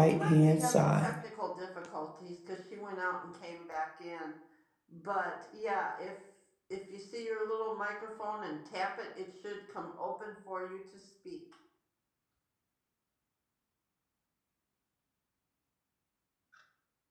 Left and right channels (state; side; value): identical; both; correlation 1.00